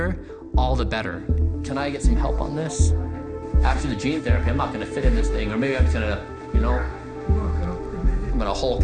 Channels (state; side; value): identical; both; correlation 1.00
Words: all the better. Can I get some help on this? After the gene therapy, I'm not gonna fit in this thing, or maybe I'm just gonna, you know, I'm gonna Hulk